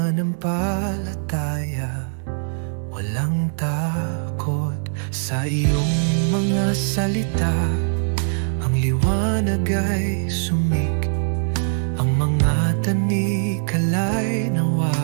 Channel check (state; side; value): silent; left; digital silence